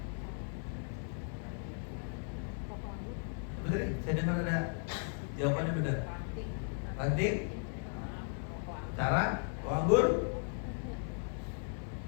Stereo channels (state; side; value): silent; right; 53 dB below the other